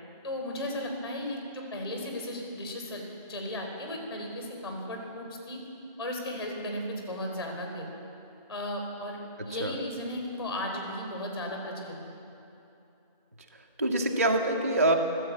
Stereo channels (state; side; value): inverted; both; correlation -0.36